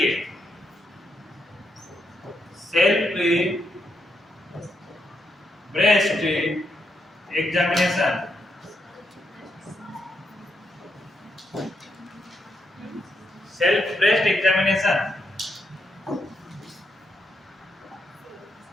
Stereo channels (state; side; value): normal; both; correlation 0.80